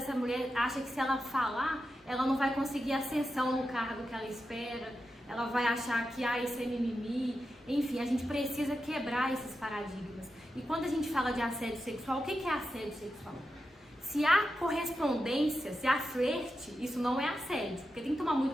mulher acha que se ela falar, ela não vai conseguir ascensão no cargo que ela espera, ela vai achar que isso é mimimi, enfim, a gente precisa quebrar esses paradigmas. E quando a gente fala de assédio sexual, o que é assédio sexual? Se há correspondência, se há flerte, isso não é assédio, porque tem que tomar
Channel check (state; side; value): normal; both; correlation 0.89